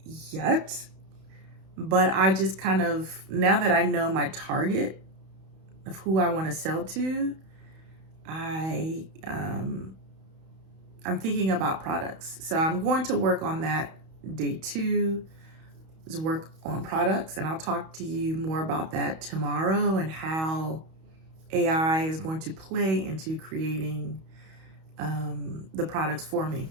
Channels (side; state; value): left; late; 31 ms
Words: yet, but I just kind of, now that I know my target of who I want to sell to, I'm thinking about products. So I'm going to work on that. Day two is work on products, and I'll talk to you more about that tomorrow and how AI is going to play into creating the products for me.